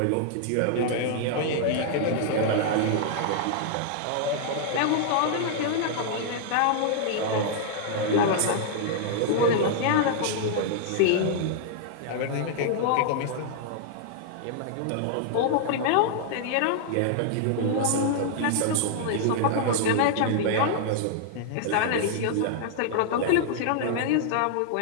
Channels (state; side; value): different; both; correlation -0.01